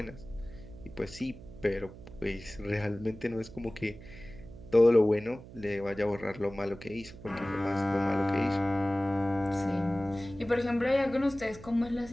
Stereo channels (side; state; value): right; noise; hum, 16 dB below the sound